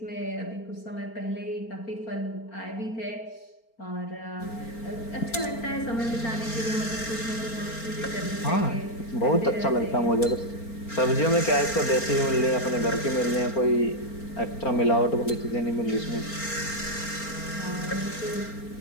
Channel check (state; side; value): late; right; 4.4 ms